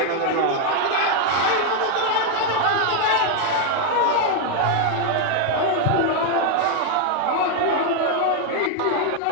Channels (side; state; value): both; different; correlation 0.01